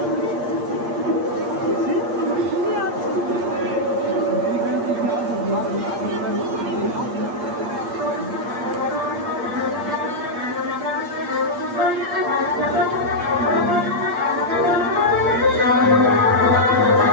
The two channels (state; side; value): late; left; 8.5 ms